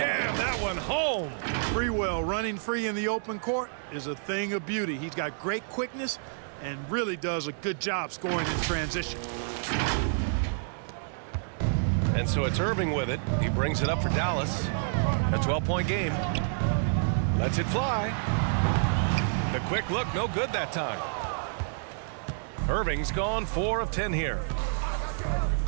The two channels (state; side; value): silent; left; digital silence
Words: that one home. Sprewell running free in the open court is a thing of beauty. He's got great quickness and really does a good job scoring in transition. And so it's Irving with it. He brings it up for Dallas. A 12-point game. Lets it fly. The quick look, no good that time. Irving's gone 4 of 10 here.